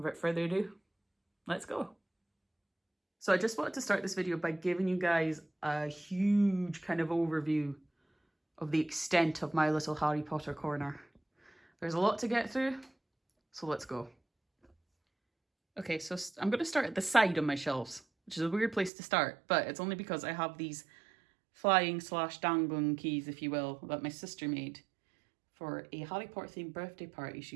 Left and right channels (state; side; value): drops out; left; at 18.9 s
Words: without further ado, let's go. So I just wanted to start this video by giving you guys a huge kind of overview of the extent of my little Harry Potter corner. There's a lot to get through, so let's go. Okay, so I'm going to start at the side of my shelves, which is a weird place to start, but it's only because I have these flying / dangling keys, if you will, that my sister made for a Harry Potter themed birthday party